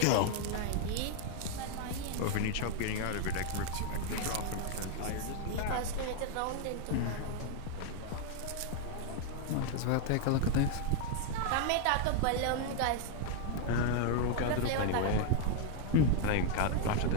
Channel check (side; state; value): both; different; correlation 0.00